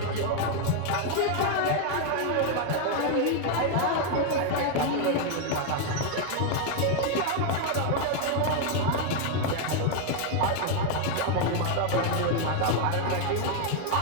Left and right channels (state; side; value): different; both; correlation 0.01